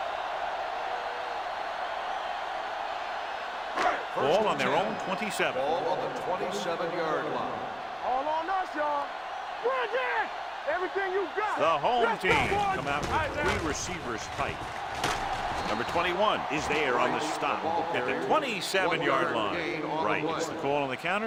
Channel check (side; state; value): both; identical; correlation 1.00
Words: Ball on their own 27. Ball on the 27-yard line. All on us, y'all. Bring it! Everything you got. The home Let's team go, come out with 3 receivers tight. Number 21 is there on the stop at the 27-yard line. Right, it's the call on the